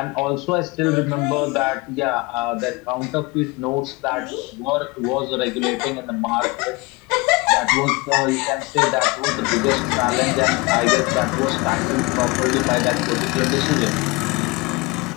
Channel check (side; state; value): right; quieter; 24.7 dB